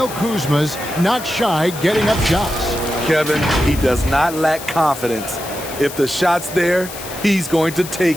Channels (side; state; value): left; noise; hiss, 12 dB below the sound